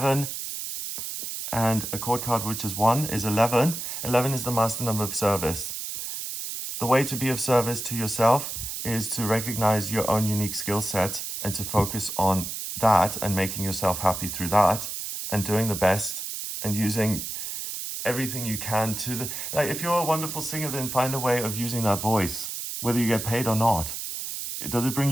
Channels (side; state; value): right; noise; hiss, 6 dB below the sound